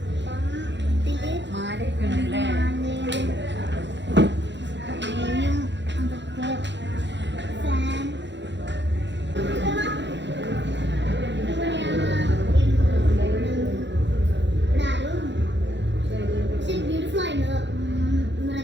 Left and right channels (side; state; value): left; late; 0.52 ms